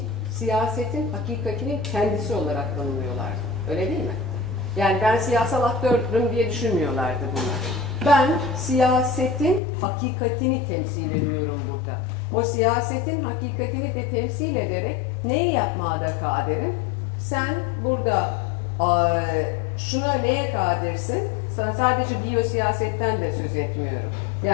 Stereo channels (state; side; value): drops out; right; at 9.6 s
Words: siyasetin hakikatinin kendisi olarak tanımlıyorlardı. Öyle değil mi? Yani ben siyasal aktörüm diye düşünmüyorlardı bunlar. Ben siyasetin hakikatini temsil ediyorum burada. O siyasetin hakikatini de temsil ederek neyi yapmaya da kaderim? Sen burada şuna neye kadirsin? Sadece biyosiyasetten de söz etmiyorum.